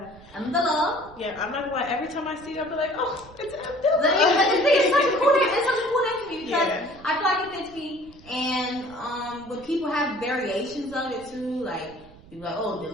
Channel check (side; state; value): right; noise; rumble, 22 dB below the sound